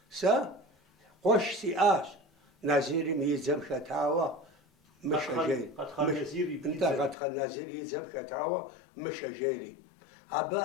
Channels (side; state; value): right; drops out; at 7.2 s